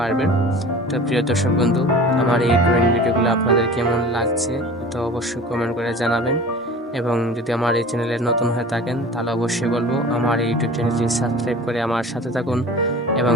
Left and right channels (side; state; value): both; normal; correlation 0.40